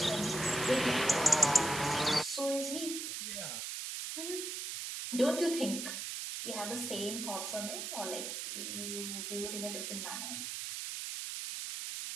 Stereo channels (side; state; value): right; noise; hiss, 4 dB below the sound